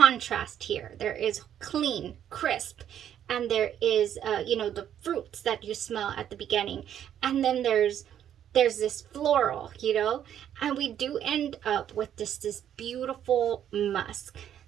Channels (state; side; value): quieter; left; 10.1 dB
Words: here. There is clean, crisp, and there is you know, the fruits that you smell at the beginning, and then there's this floral, you know, and we do end up with this beautiful musk.